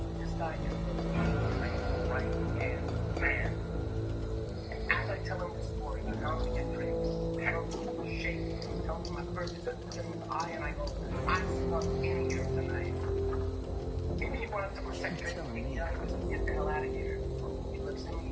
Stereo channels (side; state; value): both; identical; correlation 1.00